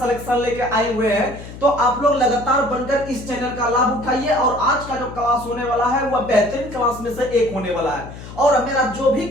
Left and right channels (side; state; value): left; noise; hum, 14 dB below the sound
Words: लेके आए हुए हैं, तो आप लोग लगातार बनकर इस चैनल का लाभ उठाइए। और आज का जो क्लास होने वाला है वह बेहतरीन क्लास में से एक होने वाला है। और मेरा जो भी